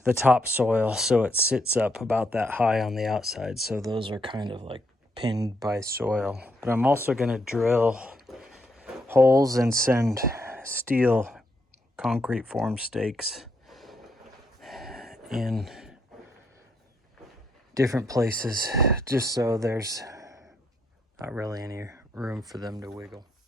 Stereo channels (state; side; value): normal; both; correlation 0.76